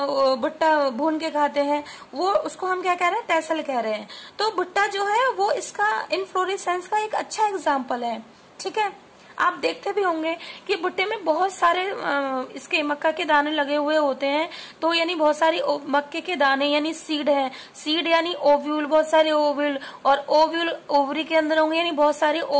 भुट्टा भून के खाते हैं, वो उसको हम क्या कह रहे हैं, टेसल कह रहे हैं। तो भुट्टा जो है वो इसका इनफ्लोरेसेंस का एक अच्छा एग्जाम्पल है, ठीक है। आप देखते भी होंगे कि भुट्टे में बहुत सारे इसके मक्का के दाने लगे हुए होते हैं, तो यानी बहुत सारी मक्के के दाने यानी सीड है, सीड यानी ओव्यूल, बहुत सारे ओव्यूल, और ओव्यूल ओवरी के अंदर होंगे यानी बहुत सारे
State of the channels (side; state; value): both; identical; correlation 1.00